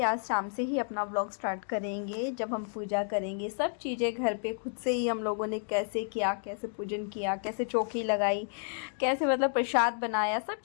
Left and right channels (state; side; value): silent; right; 57 dB below the other